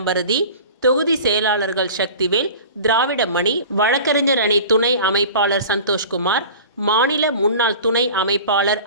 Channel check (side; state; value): both; inverted; correlation -0.39